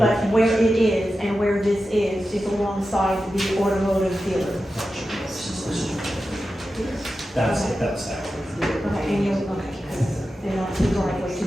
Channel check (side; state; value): both; normal; correlation 0.92